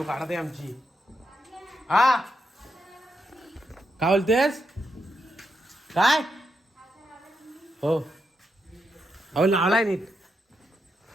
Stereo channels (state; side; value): normal; both; correlation 0.83